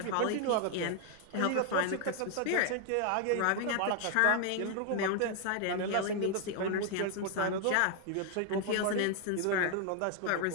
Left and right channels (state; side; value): different; both; correlation 0.00